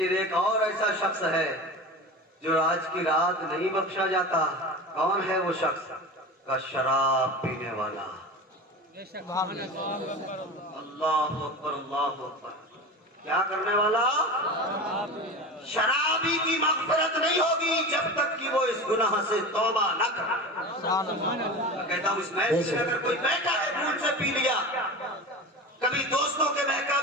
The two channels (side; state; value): both; normal; correlation 0.30